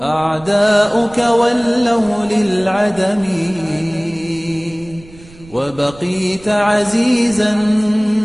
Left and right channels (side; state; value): right; noise; rumble, 22 dB below the sound